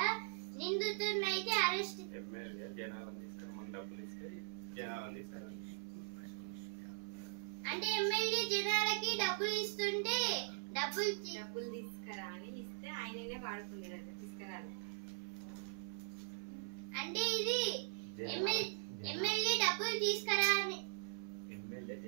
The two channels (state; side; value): silent; left; 50 dB below the other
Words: నిందితుడిని అయితే అరెస్ట్. అంటే ఎమ్మెల్యే జనాలకి డబ్బులు ఇస్తుంటే డబ్బులు తీసుకురా అని ఇస్తే ఆయననే వాడుకున్నాడు తీసుకురాలి. అంటే ఇది ఎమ్మెల్యే డబ్బులు తీసుకురా అని ఎమ్మెల్యే